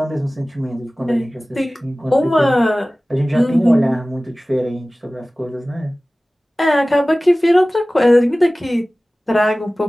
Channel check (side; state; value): both; normal; correlation 0.98